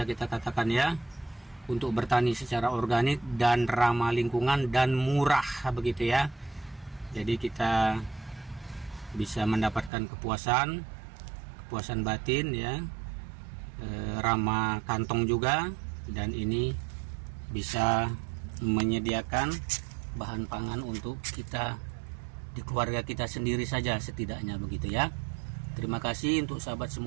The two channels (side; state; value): left; drops out; at 9.9 s